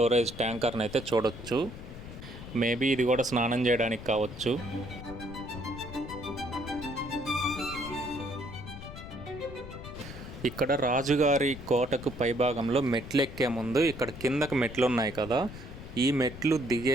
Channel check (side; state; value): left; noise; rumble, 12 dB below the sound